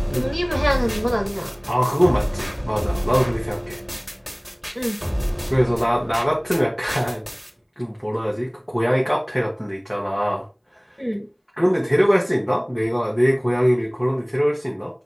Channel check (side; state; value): both; identical; correlation 1.00